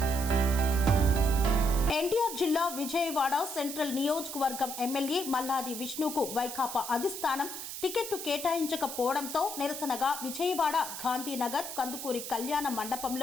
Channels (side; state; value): right; noise; hiss, 8 dB below the sound